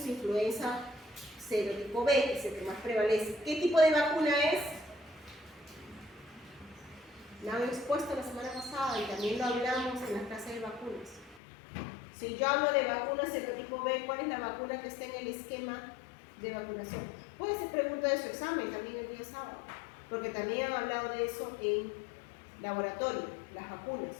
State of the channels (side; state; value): right; drops out; at 11.4 s